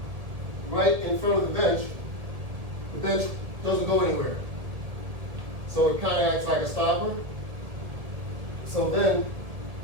right in front of the bench doesn't go anywhere. So it kind of acts like a stopper. So then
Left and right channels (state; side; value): late; left; 1.7 ms